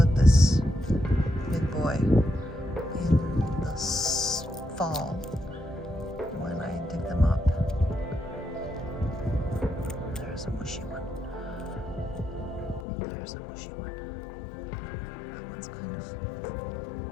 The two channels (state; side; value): drops out; right; at 12.9 s